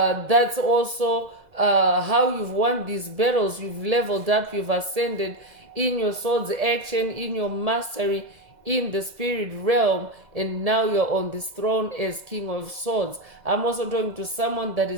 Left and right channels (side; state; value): left; late; 2.0 ms